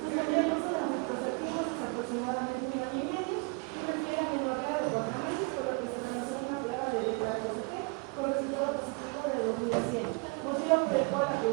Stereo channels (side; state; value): left; quieter; 32.4 dB